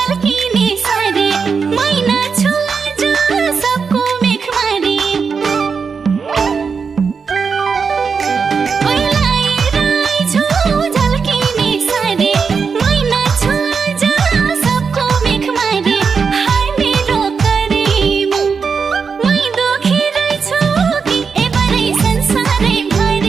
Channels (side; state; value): left; quieter; 5.6 dB